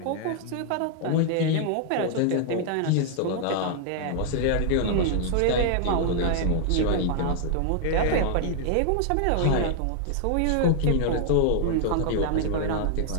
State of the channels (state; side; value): different; both; correlation -0.01